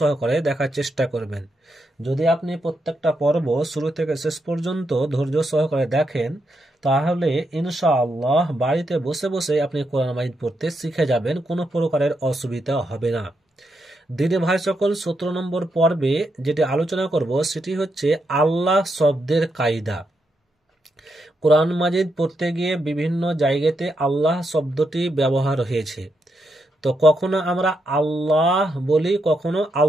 দেখার চেষ্টা করবেন। যদি আপনি প্রত্যেকটা পর্ব শুরু থেকে শেষ পর্যন্ত ধৈর্য সহকারে দেখেন তাহলে ইনশাআল্লাহ বাড়িতে বসে বসে আপনি কোরআন মাজিদ পড়তে শিখে যাবেন, কোনো প্রকারের অসুবিধা হবে না। দিদি ভাই সকল, 17 নম্বর পর্বে যেটি আলোচনা করব সেটি হচ্ছে আল্লাহ শব্দের কায়দা। কোরআন মাজিদ পড়তে গিয়ে বিভিন্ন জায়গাতে আল্লাহ শব্দটি ব্যবহার হয়েছে। তো কখনো আমরা আল্লাহ বলি, কখনো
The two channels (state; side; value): normal; both; correlation 0.82